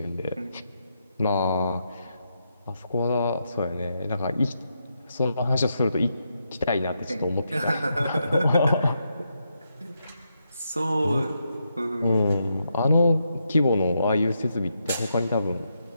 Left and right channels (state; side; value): inverted; both; correlation -0.82